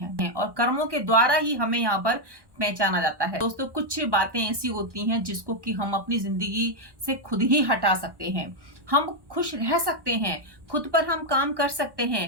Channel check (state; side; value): late; left; 1.1 ms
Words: और कर्मों के द्वारा ही हमें यहाँ पर पहचाना जाता है। दोस्तों, कुछ बातें ऐसी होती हैं जिसको कि हम अपनी जिंदगी से खुद ही हटा सकते हैं। हम खुश रह सकते हैं, खुद पर हम काम कर सकते